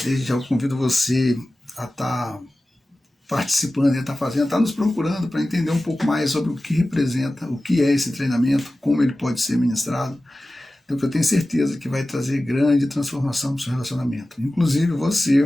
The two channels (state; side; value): normal; both; correlation 0.96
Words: desde já eu convido você a estar participando, está nos procurando para entender um pouco mais sobre o que representa, o que é esse treinamento, como ele pode ser ministrado. Então, eu tenho certeza que vai trazer grande transformação para o seu relacionamento. Inclusive